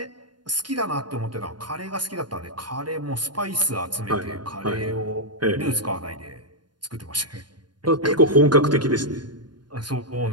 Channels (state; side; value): late; left; 0.71 ms